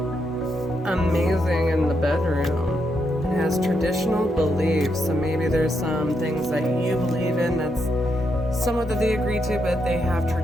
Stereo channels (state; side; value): normal; both; correlation 0.80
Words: amazing in the bedroom. It has traditional beliefs, so maybe there's some things that you believe in that's somewhat that they agree to, but they have